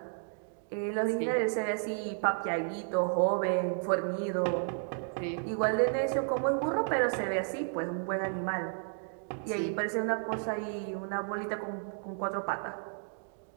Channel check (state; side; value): silent; left; 56 dB below the other